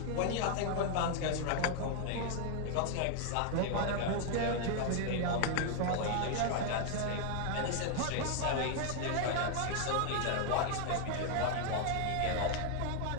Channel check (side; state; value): both; different; correlation 0.00